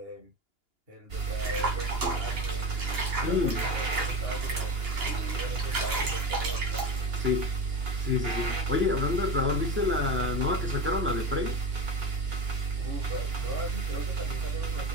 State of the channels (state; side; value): late; left; 2.9 ms